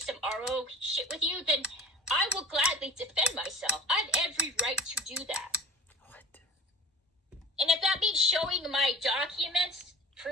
RO shit with you, then I will gladly defend myself. I have every right to do that. What? And if that means showing my documents,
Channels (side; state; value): both; normal; correlation 0.40